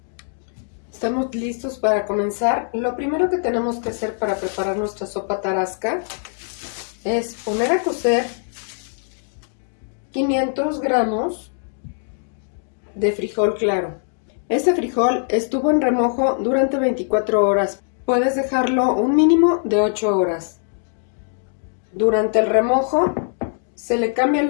Estamos listos para comenzar. Lo primero que tenemos que hacer para preparar nuestra sopa tarasca es poner a cocer 500 gramos de frijol claro. Este frijol estuvo en remojo durante 24 horas. Puedes dejarlo un mínimo de 8 horas. Durante el remojo se le cambia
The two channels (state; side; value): silent; right; 63 dB below the other